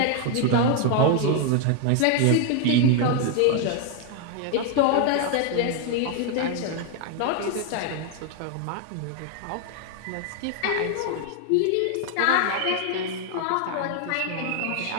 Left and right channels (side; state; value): both; different; correlation 0.00